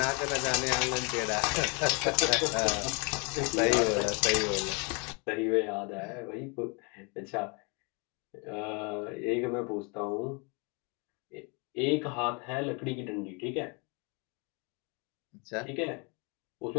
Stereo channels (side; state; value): right; quieter; 32.6 dB